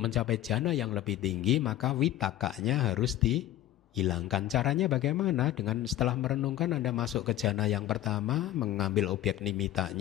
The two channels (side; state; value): right; quieter; 13.6 dB